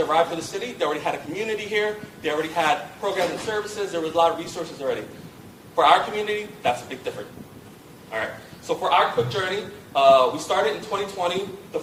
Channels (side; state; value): both; identical; correlation 1.00